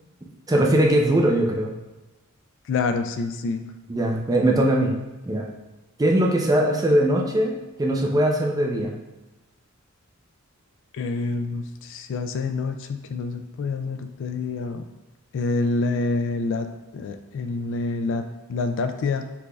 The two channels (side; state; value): both; normal; correlation 0.62